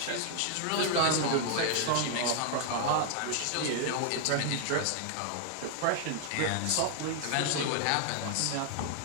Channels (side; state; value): both; different; correlation 0.00